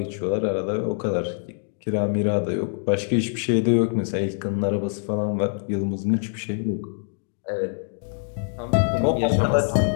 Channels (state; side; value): silent; right; digital silence